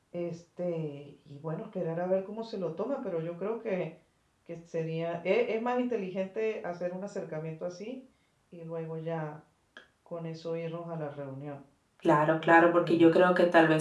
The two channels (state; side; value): identical; both; correlation 1.00